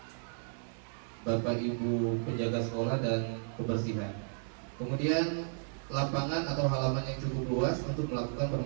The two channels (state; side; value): silent; left; digital silence